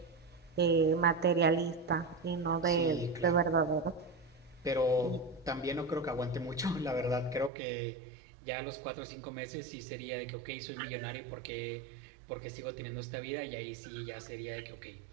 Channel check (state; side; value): drops out; left; at 7.5 s